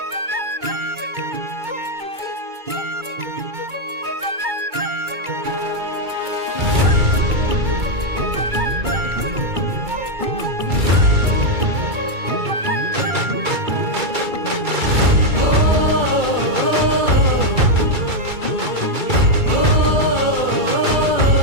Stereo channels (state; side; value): late; left; 2.3 ms